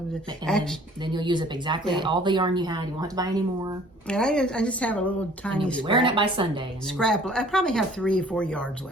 then you'll use up exactly all the yarn you had. You won't have to buy any more. And I just have a little tiny and you'll be wearing it by Sunday. And scrap. I probably have 3 or 4 yards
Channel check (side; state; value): both; normal; correlation 0.54